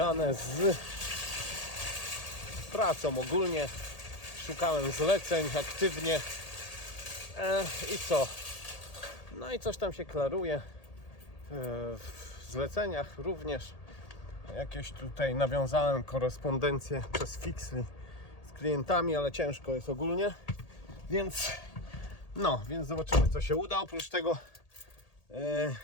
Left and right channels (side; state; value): right; late; 1.8 ms